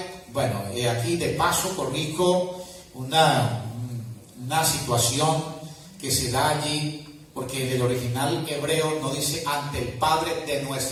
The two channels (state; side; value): identical; both; correlation 1.00